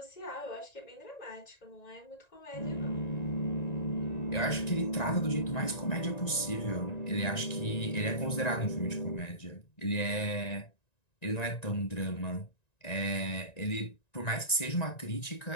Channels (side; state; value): right; late; 1.9 ms